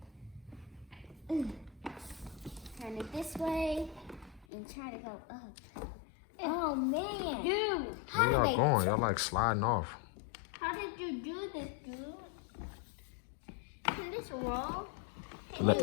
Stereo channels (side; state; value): right; drops out; at 4.5 s